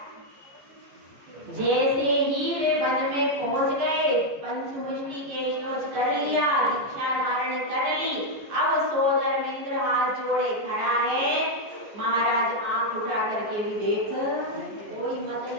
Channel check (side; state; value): left; late; 14 ms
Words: जैसे ही वे वन में पहुंच गए, पंचमुष्टि के श्लोक कर लिया, दीक्षा धारण कर ली। अब सौदर मित्र हाथ जोड़े खड़ा है। महाराज आंख उठा करके भी देख, कोई